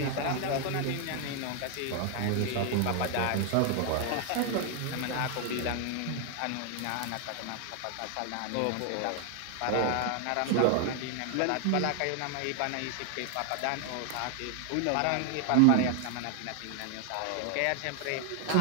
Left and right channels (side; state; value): both; different; correlation 0.00